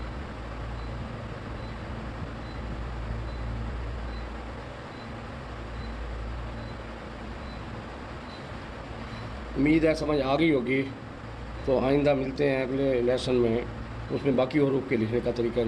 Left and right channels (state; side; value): identical; both; correlation 1.00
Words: امید ہے سمجھ آ گئی ہوگی۔ تو آئندہ ملتے ہیں اگلے لیسن میں، اس میں باقی حروف کے لکھنے کا طریقہ